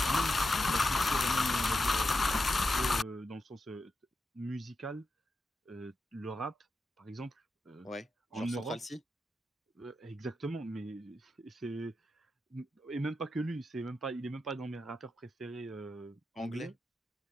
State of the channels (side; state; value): both; normal; correlation 0.88